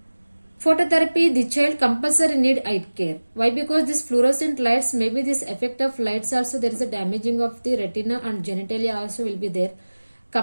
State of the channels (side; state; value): both; inverted; correlation -1.00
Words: Phototherapy, the child compulsory need eye care. Why? Because this fluorescent lights, maybe this effect of lights also, there is a damaging of the retina and genitalia also will be there.